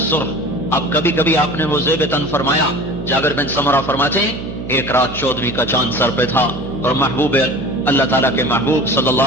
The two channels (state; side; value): noise; right; hum, 9 dB below the sound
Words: سرخ. اب کبھی کبھی آپ نے وہ زیب تن فرمایا. جابر بن سمرہ فرماتے ہیں ایک رات 14ویں کا چاند سر پہ تھا اور محبوب اللہ تعالیٰ کے محبوب صلی